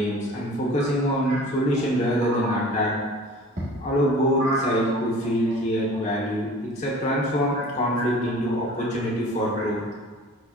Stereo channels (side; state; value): both; normal; correlation 0.44